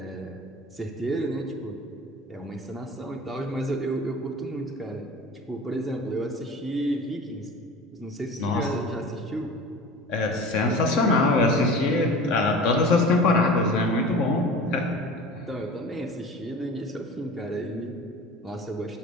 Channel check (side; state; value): both; normal; correlation 0.38